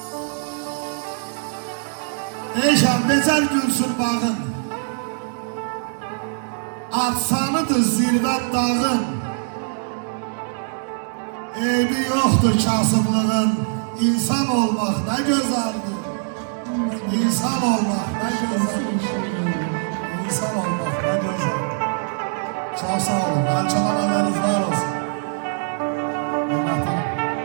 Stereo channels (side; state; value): left; silent; 64 dB below the other